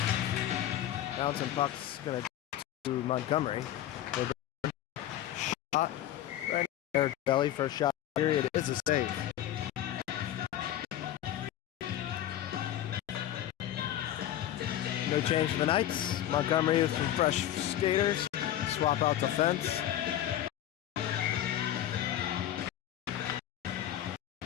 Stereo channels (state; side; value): quieter; right; 12.3 dB